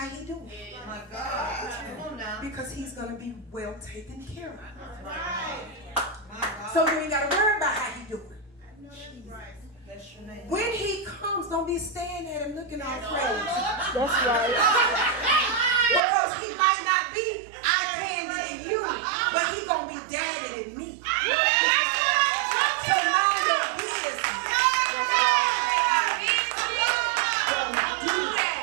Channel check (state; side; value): drops out; left; at 16.0 s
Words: he doing. My God. Come on now. Because he's going to be well taken care of. Right. My God. So you ain't got to worry about how he doing. Bless your name. When he comes, don't be staring at him looking all crazy. That's right. Because he might not be eye-candy to you, but he going to be daddy to me. So mind your business. Do